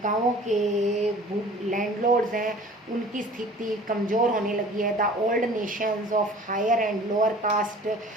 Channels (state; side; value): normal; both; correlation 0.46